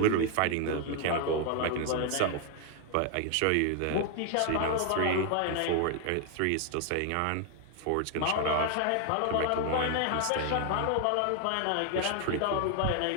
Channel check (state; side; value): different; both; correlation 0.00